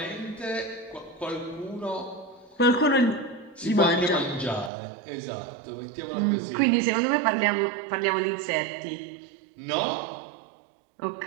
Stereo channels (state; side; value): drops out; left; at 4.7 s